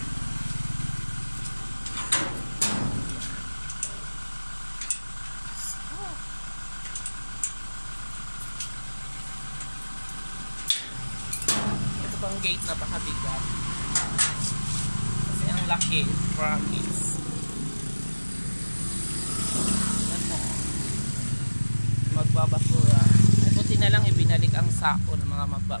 Ang gate napakabigat kasi ang laki, promise. Ano, magbabasura ay buti na lang ibinalik ang sako ng mga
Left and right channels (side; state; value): both; inverted; correlation -1.00